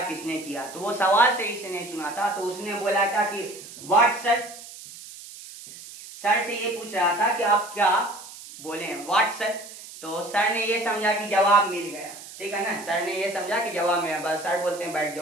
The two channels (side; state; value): right; noise; hiss, 15 dB below the sound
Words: किसने किया? तो वो सवाल सही से नहीं सुना था, तो उसने बोला था कि व्हाट सर। सर से ये पूछ रहा था कि आप क्या बोले? What sir. तो सर ने ये समझा कि जवाब मिल गया, ठीक है ना। सर ने ये समझा कि जवाब मिला, बस सर बोलते हैं बैठ